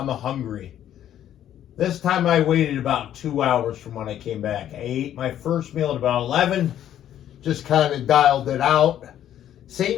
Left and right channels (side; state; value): right; quieter; 11.1 dB